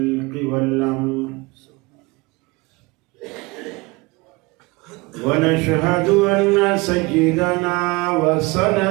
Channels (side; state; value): left; quieter; 24.4 dB